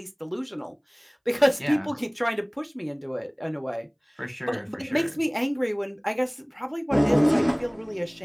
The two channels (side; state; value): both; identical; correlation 1.00